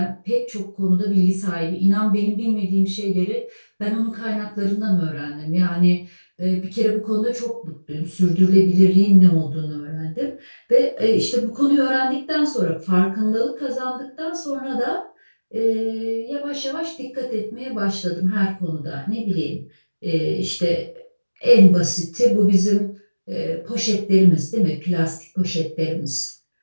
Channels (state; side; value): inverted; both; correlation -1.00